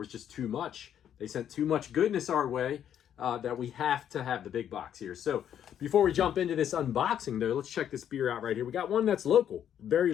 just too much. They sent too much goodness our way that we have to have the big box here. So before we jump into this unboxing though, let's check this beer out right here. We got one that's local, very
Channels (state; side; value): quieter; right; 9.7 dB